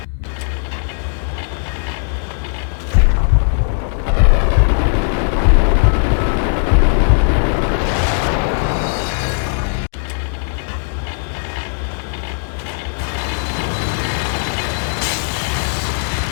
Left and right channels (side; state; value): right; silent; 65 dB below the other